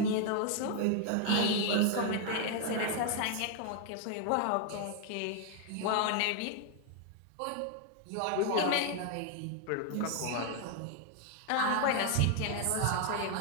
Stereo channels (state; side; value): different; both; correlation 0.00